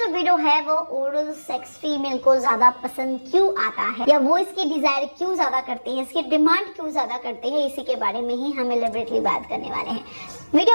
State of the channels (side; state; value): both; inverted; correlation -1.00